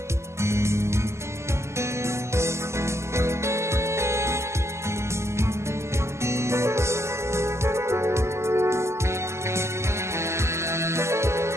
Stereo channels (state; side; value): late; left; 0.13 ms